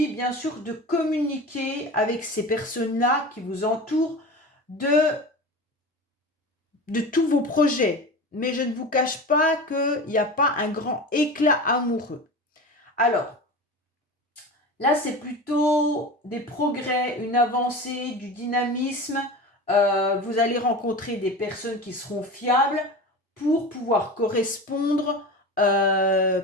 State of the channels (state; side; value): normal; both; correlation 0.30